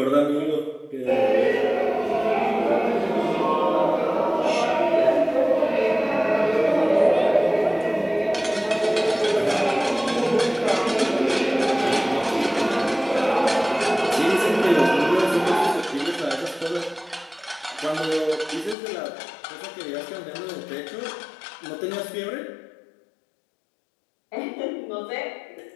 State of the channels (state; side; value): drops out; right; at 18.8 s